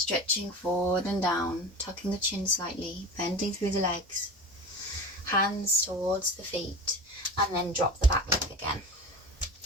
forward and down. Tucking the chin slightly. Bending through the legs. Hands towards the feet. And then drop the back leg again.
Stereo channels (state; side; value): normal; both; correlation 0.31